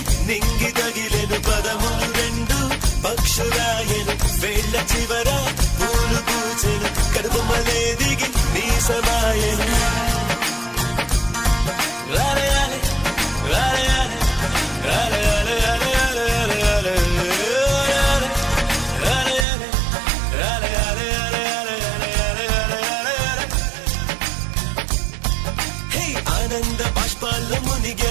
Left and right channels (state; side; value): drops out; left; at 19.5 s